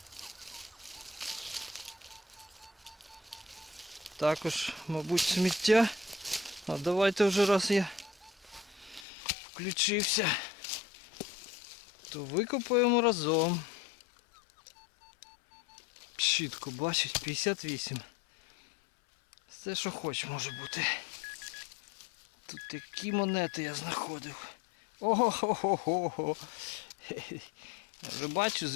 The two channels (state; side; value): drops out; right; at 9.1 s